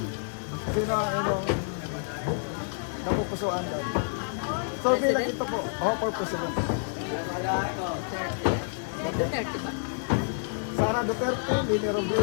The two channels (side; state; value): right; silent; digital silence